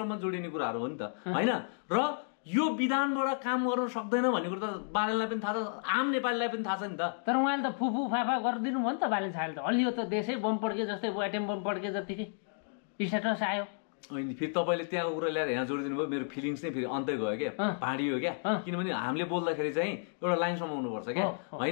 जोडिने कुराहरू हो नि त होइन। र यो विधानबाट काम गर्न सक्दैन भन्ने कुरो त बालेनलाई पनि थाहा छ, आम नेपालीलाई पनि थाहा छ नि त। तर उहाँले त फुफु फाफा गरिदिनु भयो नि त बालेन साहबले त। हलियो त देशै बम पड्के जस्तै एटम बम पड्के जतिकै स्ट्याटस आयो। अनि फेरि तपाईँले त्यहाँको कुरा ल्याएर यहाँ जोडिदिनु भयो, मेरो फिलिङ्स नै फेरि अन्तै गयो क्या, भाँडियो क्या। किनभने हामीले बोल्दाखेरि चाहिँ एउटा लाइन समाउनुपर्छ क्या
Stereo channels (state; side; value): silent; right; digital silence